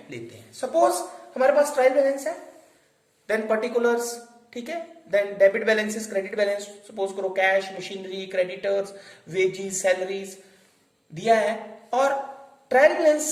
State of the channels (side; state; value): both; identical; correlation 1.00